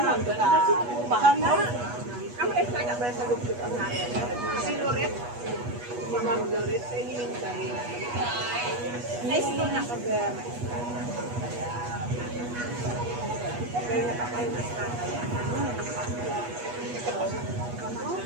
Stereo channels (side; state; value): left; late; 8.3 ms